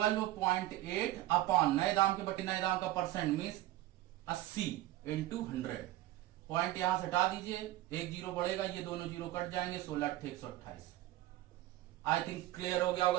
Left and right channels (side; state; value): left; quieter; 15.6 dB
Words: अपॉन नए दाम के बटे नए दाम का परसेंट मीन्स 80 इंटू 100। पॉइंट यहां से हटा दीजिए, एक जीरो बढ़ेगा, ये दोनों जीरो कट जाएंगे, 16/128। आई थिंक क्लियर हो गया